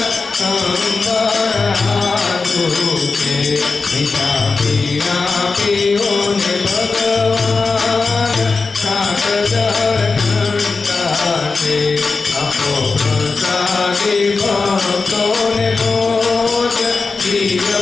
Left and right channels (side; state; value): right; quieter; 4.2 dB